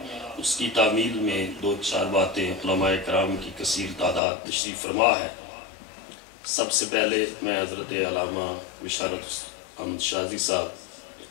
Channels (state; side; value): drops out; right; at 4.2 s